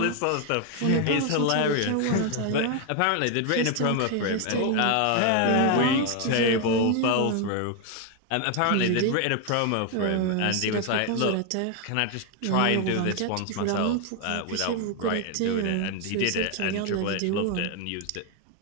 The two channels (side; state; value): both; different; correlation 0.01